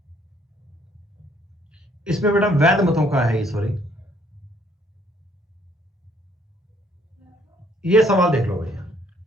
इसमें बेटा वैध मतों का है, सॉरी, ये सवाल देख लो भैया।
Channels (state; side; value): normal; both; correlation 0.65